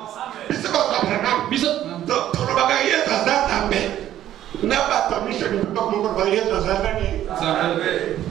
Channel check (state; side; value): quieter; left; 12.2 dB